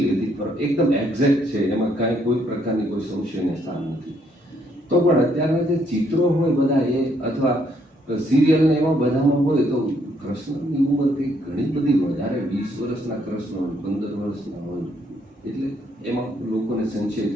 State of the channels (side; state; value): both; normal; correlation 0.71